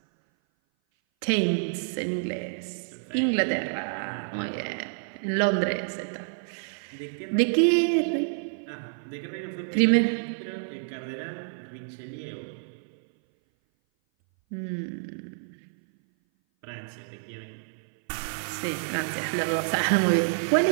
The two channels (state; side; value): silent; left; 57 dB below the other